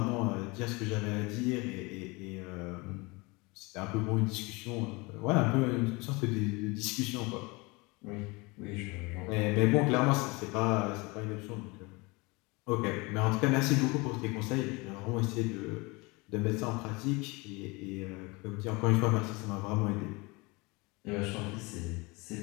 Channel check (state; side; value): quieter; right; 25.8 dB